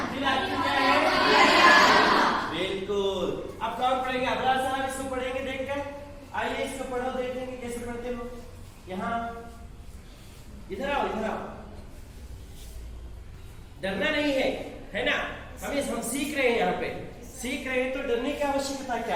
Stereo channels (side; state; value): both; identical; correlation 1.00